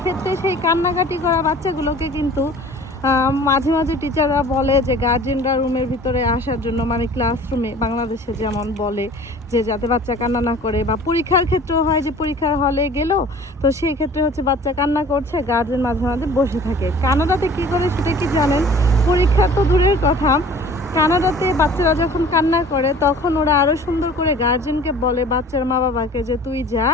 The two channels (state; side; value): normal; both; correlation 0.47